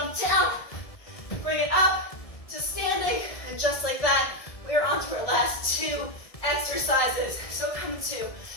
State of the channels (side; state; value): right; late; 1.7 ms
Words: down, bring it up to standing, and just like that, we are on to our last 2 exercises. So come to